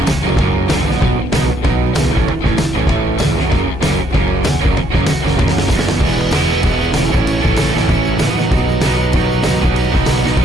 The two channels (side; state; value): both; normal; correlation 0.71